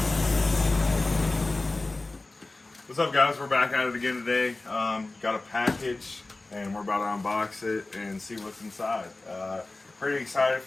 What's up, guys? We're back at it again today. Got a package, and we're about to unbox it and see what's inside. Pretty excited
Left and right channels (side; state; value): right; quieter; 3.1 dB